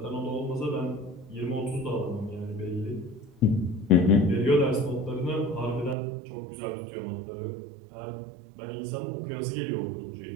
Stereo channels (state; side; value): drops out; left; at 6.0 s